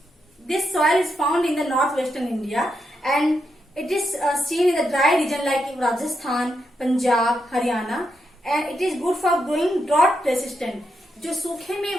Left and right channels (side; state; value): both; normal; correlation 0.83